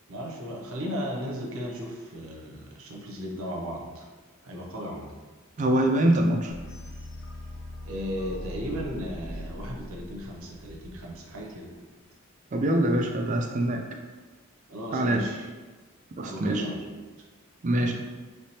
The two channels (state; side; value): normal; both; correlation 0.64